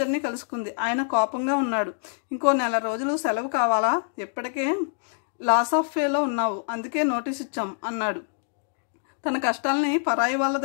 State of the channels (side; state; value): right; silent; digital silence